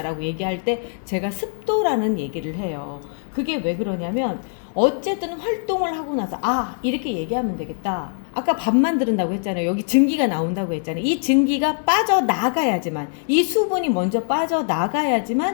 라고 얘기할 때 제가 습도라는 얘기를 해요. 그게 왜 그러냐면 어쨌든 활동을 하고 나서 아, 이렇게 얘기하면 되겠다. 아까 밥 만드는다고 했잖아요. 여기 증기가 나온다고 했잖아요. 이 증기가 빠져나가야지만, 이 수분이 먼저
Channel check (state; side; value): silent; right; digital silence